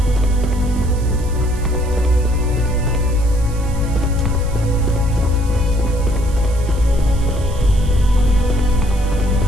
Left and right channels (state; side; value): noise; right; hiss, 20 dB below the sound